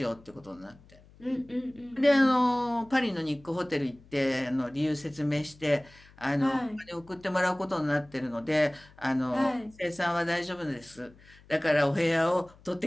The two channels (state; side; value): noise; left; hum, 25 dB below the sound